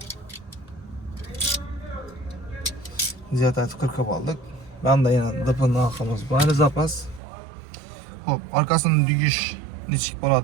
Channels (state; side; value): drops out; left; at 7.2 s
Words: Ziyod etib qirqib oldik. Ben de yine dıpın arkamız var zapas. Hop, arkasının düğüş niçik